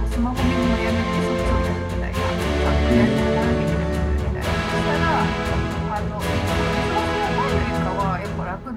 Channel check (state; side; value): identical; both; correlation 1.00